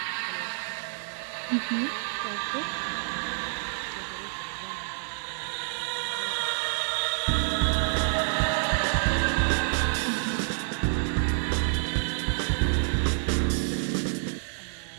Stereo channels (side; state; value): left; silent; digital silence